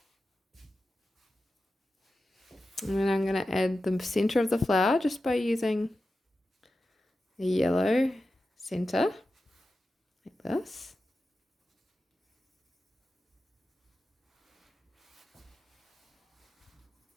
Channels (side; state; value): both; normal; correlation 0.92